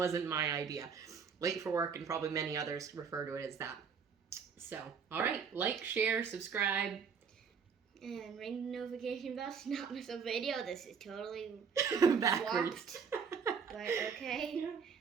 my idea. Late for work, and probably many others refer to it as that. So, all right, like, share, subscribe. And ring the notification bell to not miss a video. This is totally Backwards. swapped. But okay.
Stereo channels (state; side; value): quieter; left; 6.3 dB